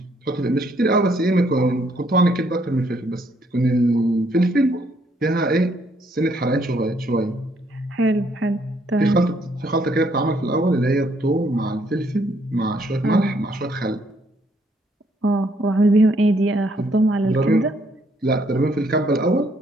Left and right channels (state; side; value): normal; both; correlation 0.69